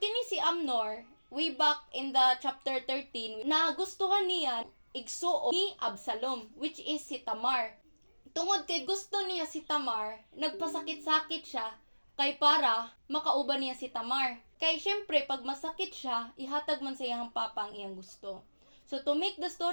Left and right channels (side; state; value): both; inverted; correlation -1.00